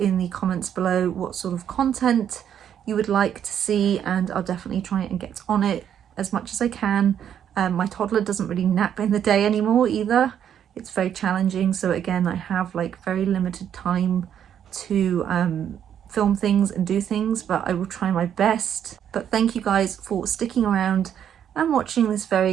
the comments below what sort of content you would like to see, and I'll definitely try and get on it as much as I can. My toddler doesn't really nap in the day anymore either. It's very challenging, so again I have like very limited time to film things and do things, but I will try my best. But thank you guys for sticking around and watching this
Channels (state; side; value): quieter; left; 9.3 dB